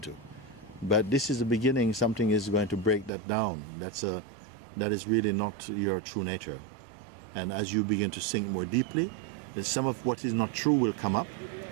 But this is the beginning. Something is going to break that down. That is really not your true nature. And as you begin to sink more deeply, then some of what is not true will come up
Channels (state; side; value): drops out; left; at 3.1 s